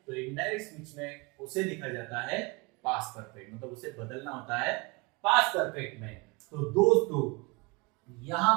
तो इनडायरेक्ट स्पीच में उसे लिखा जाता है पास्ट परफेक्ट, मतलब उसे बदलना होता है पास्ट परफेक्ट में। तो दोस्तों यहां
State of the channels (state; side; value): quieter; left; 27.1 dB